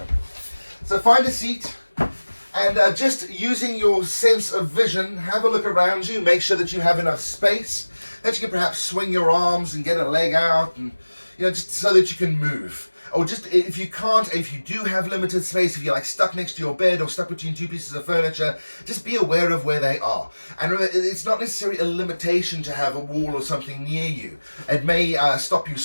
So find a seat and just using your sense of vision, have a look around you. Make sure that you have enough space, that you can perhaps swing your arms and get a leg out, and just so that you can move. Or just if you can't, if you do have limited space, if you're like stuck next to your bed or stuck between two pieces of furniture, just be aware of where they are. And remember, it's not necessarily a limitation to have a wall or something near you. It may stop you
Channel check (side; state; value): both; inverted; correlation -1.00